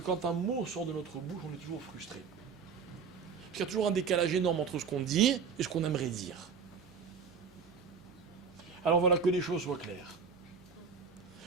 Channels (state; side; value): quieter; left; 5.9 dB